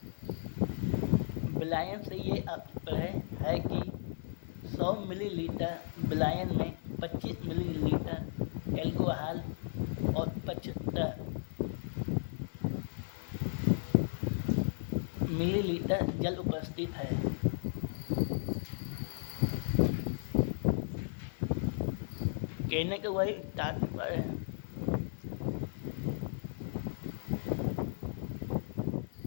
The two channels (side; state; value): right; silent; digital silence